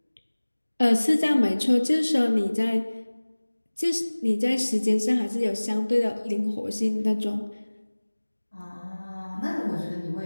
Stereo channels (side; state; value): both; inverted; correlation -1.00